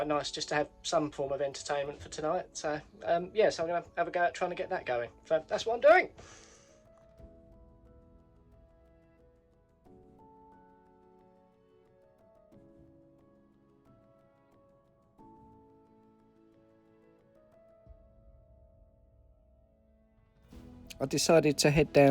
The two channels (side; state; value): both; identical; correlation 1.00